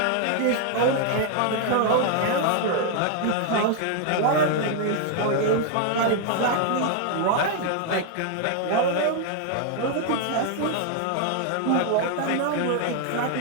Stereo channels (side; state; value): both; different; correlation 0.00